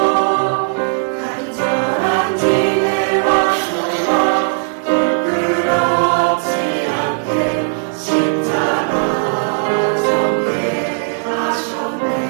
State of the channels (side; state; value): left; silent; digital silence